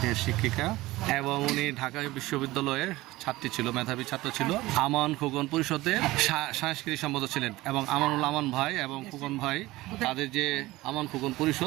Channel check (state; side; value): quieter; left; 18.6 dB